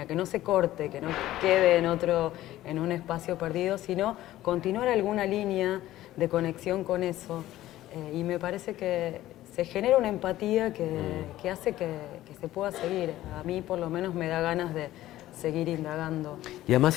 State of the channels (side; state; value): right; quieter; 14.8 dB